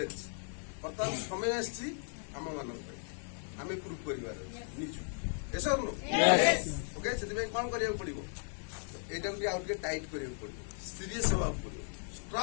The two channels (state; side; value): silent; right; 54 dB below the other